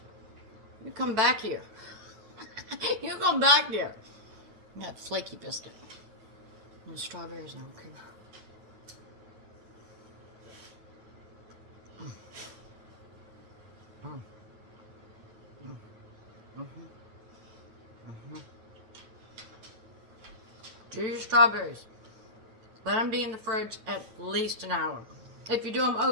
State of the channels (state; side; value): late; left; 9.3 ms